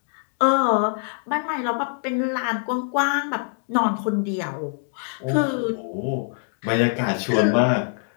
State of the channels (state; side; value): silent; right; digital silence